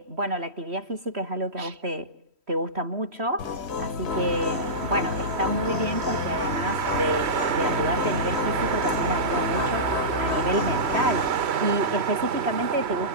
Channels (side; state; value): left; late; 3.1 ms